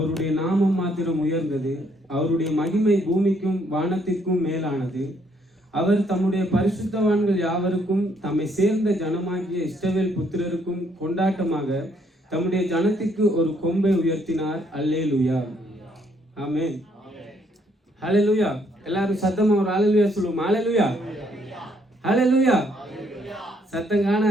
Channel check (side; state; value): both; normal; correlation 0.69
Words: நாமம் மாத்திரம் உயர்ந்தது. அவருடைய மகிமை பூமிக்கும் வானத்திற்கும் மேலானது. அவர் தம்முடைய பரிசுத்தவான்கள் யாவருக்கும் தம்மை சேர்ந்த ஜனமாகிய இஸ்ரவேல் புத்திரருக்கும் கொண்டாட்டமாக தம்முடைய ஜனத்திற்கு ஒரு கொம்பை உயர்த்தினார். அல்லேலூயா, ஆமென். ஹல்லேலூயா. எல்லாரும் சத்தமா ஒரு ஹல்லேலூயா சொல்லுவோம். ஹல்லேலூயா, ஹல்லேலூயா. சத்தம்